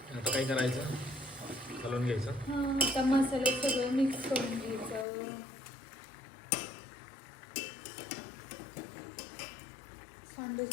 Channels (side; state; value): right; drops out; at 5.1 s